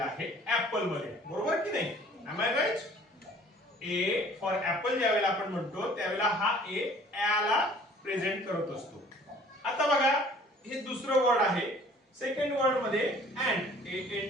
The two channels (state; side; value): normal; both; correlation 0.52